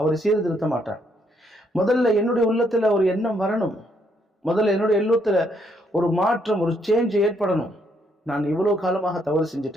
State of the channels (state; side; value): normal; both; correlation 0.72